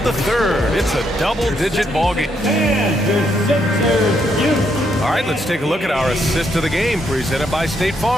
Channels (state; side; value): normal; both; correlation 0.76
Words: the third, it's a double-digit ballgame. All right, let's take a look at our assist of the game presented by State